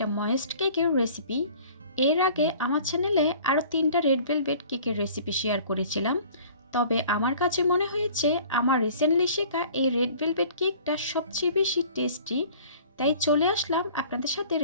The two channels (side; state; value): both; inverted; correlation -0.48